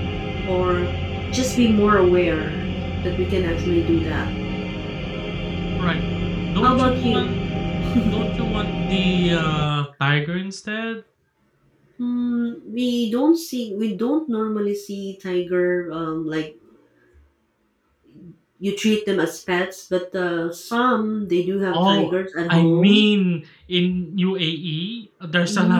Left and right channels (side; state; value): both; identical; correlation 1.00